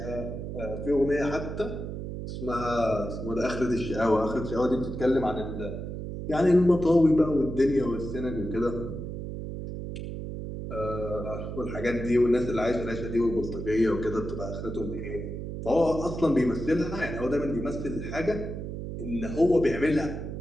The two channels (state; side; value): noise; right; hum, 6 dB below the sound